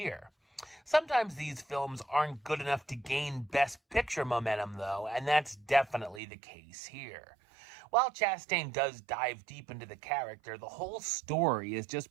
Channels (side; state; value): left; drops out; at 6.2 s